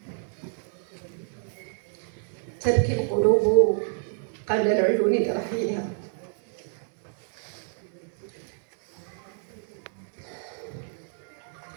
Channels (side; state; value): left; silent; digital silence